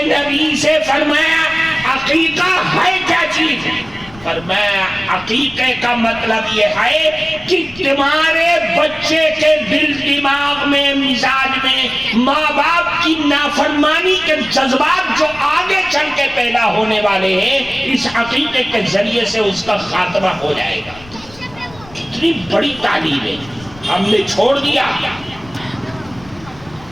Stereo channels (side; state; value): left; noise; rumble, 21 dB below the sound